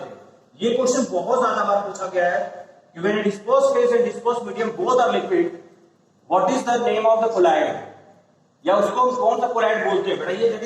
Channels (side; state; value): both; identical; correlation 1.00